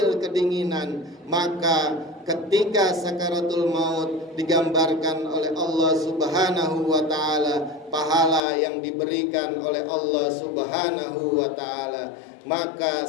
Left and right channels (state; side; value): drops out; right; at 8.4 s